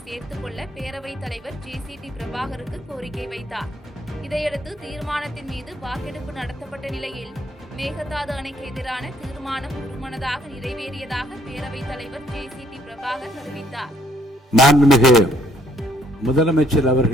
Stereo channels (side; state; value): both; normal; correlation 0.66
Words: சேர்த்துக் கொள்ள பேரவைத் தலைவர் JCT பிரபாகருக்கு கோரிக்கை வைத்தார். இதையடுத்து தீர்மானத்தின் மீது வாக்கெடுப்பு நடத்தப்பட்ட நிலையில் மேகதாது அணைக்கு எதிரான தீர்மானம் ஒருமனதாக நிறைவேறியதாக பேரவைத் தலைவர் JCT பிரபாகர் தெரிவித்தார். மாண்புமிகு முதலமைச்சர்